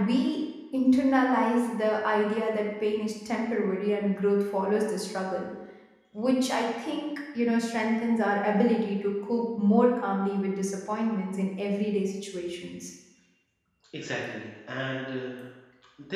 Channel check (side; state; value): both; identical; correlation 1.00